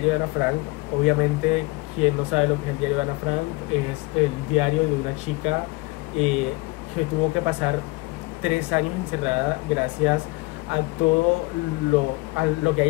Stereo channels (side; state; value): right; quieter; 23.7 dB